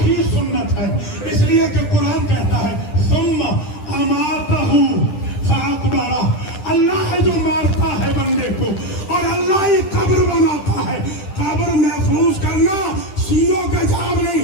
سنت ہے. اس لیے کہ قرآن کہتا ہے ثم اماتہ فاقبرہ, اللہ ہے جو مارتا ہے بندے کو اور اللہ ہی قبر بناتا ہے. قبر محفوظ کرنا شیعوں کا جاب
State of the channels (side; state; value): right; late; 10 ms